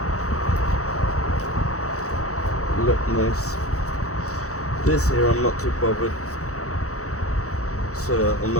Look nice. This here I'm not too bothered, so I'm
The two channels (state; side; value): late; right; 0.65 ms